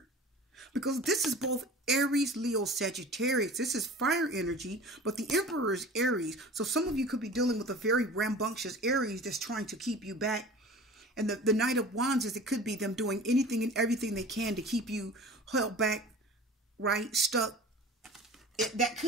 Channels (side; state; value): both; normal; correlation 0.40